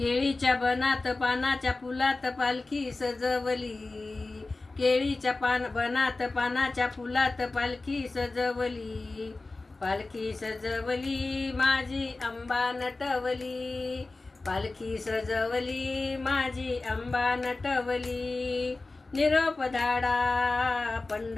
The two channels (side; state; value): right; quieter; 3.3 dB